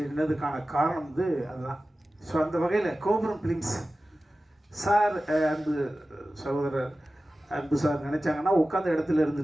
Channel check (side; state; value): both; normal; correlation 0.95